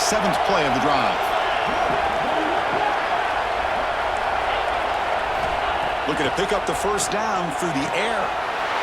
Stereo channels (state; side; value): identical; both; correlation 1.00